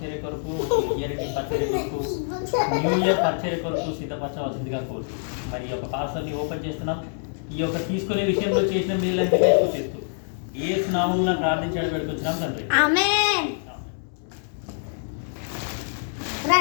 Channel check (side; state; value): right; silent; 62 dB below the other